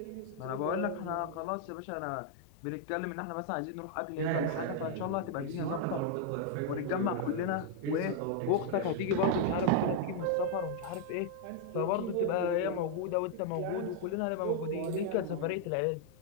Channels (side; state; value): both; different; correlation 0.00